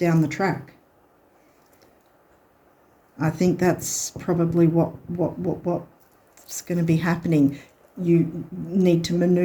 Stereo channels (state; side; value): identical; both; correlation 1.00